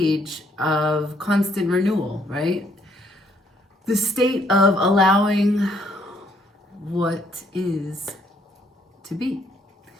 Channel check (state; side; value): normal; both; correlation 0.68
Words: of constant renewal, right? The state of allowing what is to be.